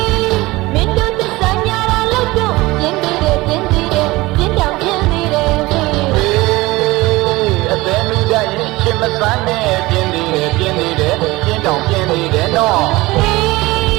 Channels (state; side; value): quieter; left; 20.6 dB